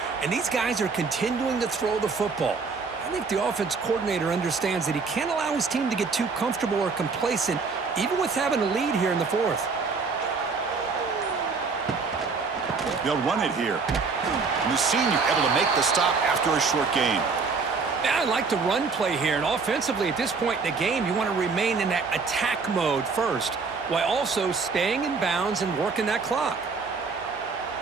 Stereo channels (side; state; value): left; quieter; 4.7 dB